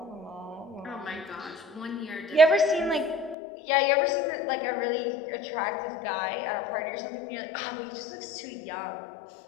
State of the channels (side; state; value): right; drops out; at 3.4 s